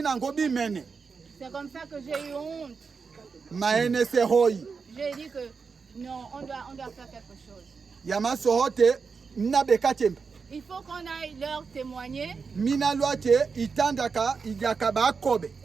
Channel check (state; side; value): quieter; left; 5.2 dB